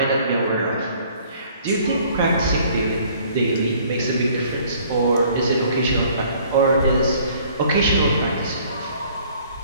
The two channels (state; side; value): inverted; both; correlation -0.57